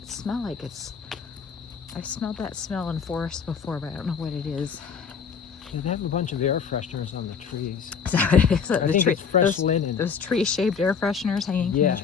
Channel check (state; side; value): quieter; right; 6.3 dB